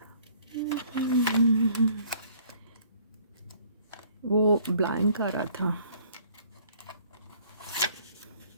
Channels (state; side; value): inverted; both; correlation -0.58